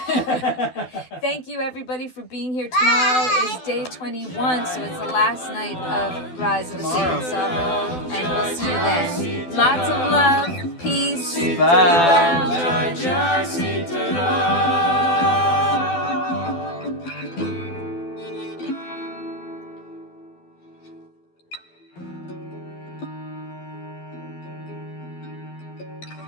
Thank you, everybody, for being here. Tomorrow is day 21, so it's the last night of Rise of the Sacred Sorrow.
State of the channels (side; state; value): right; late; 12 ms